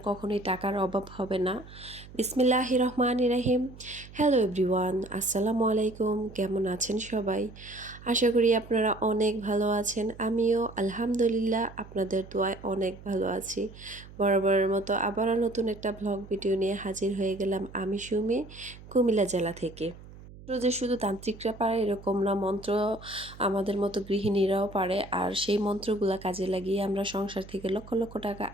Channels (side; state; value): right; noise; hum, 18 dB below the sound